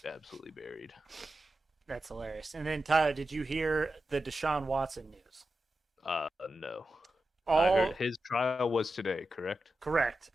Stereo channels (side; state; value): both; normal; correlation 0.91